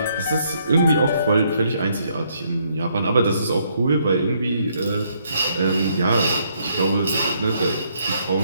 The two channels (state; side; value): inverted; both; correlation -0.71